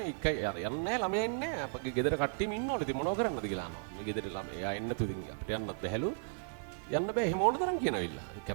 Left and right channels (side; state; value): left; silent; digital silence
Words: එකයි යන්නේ නැහැ ළමයා ඉන්නේ නැහැ. අපගේ ගෙදර කට්ටියම ඉන්නවලු. ඉතින් මොනව කරන්නද කියලා අහනවා. මේ ගෙදර ළමයා එන්න තුලින් අපිට යන්නත් බැහැලු. යන්න බෑ එහෙම ඕන තරම් කියනවිල්ලා.